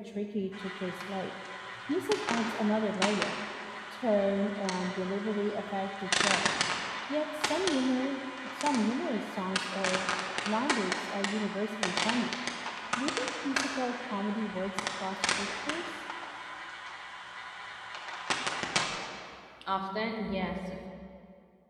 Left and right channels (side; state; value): both; identical; correlation 1.00